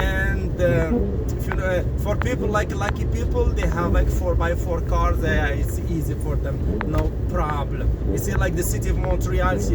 if you know, for people like lucky people, they have 4x4 cars. It's easy for them, no problem. You see, like the city of Montreal,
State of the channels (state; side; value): identical; both; correlation 1.00